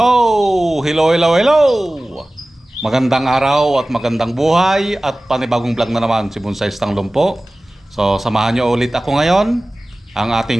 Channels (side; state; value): both; normal; correlation 0.98